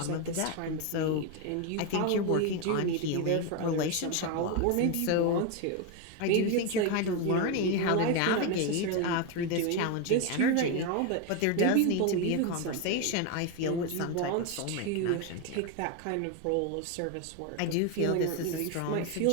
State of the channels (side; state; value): both; different; correlation 0.02